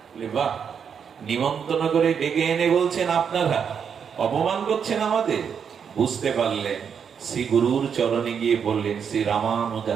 বাহ, নিমন্ত্রণ করে ডেকে এনে বলছেন আপনারা, অপমান করছেন আমাদের। বুঝতে পারলেন, শ্রী গুরুর চরণে গিয়ে বললেন, শ্রী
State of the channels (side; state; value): left; quieter; 7.2 dB